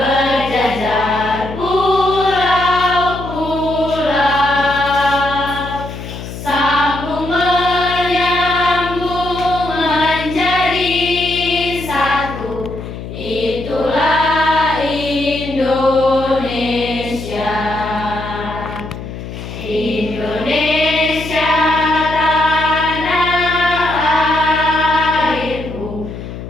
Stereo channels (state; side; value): noise; left; hum, 10 dB below the sound